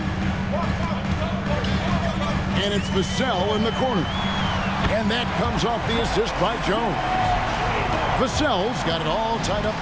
And it's Vassell in the corner. And that comes off the assist by Jones. Vassell's got it all tied up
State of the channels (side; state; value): both; identical; correlation 1.00